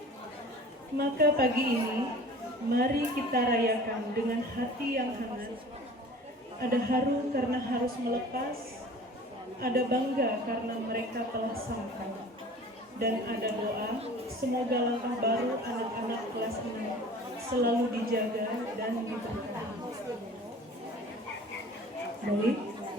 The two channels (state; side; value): normal; both; correlation 0.43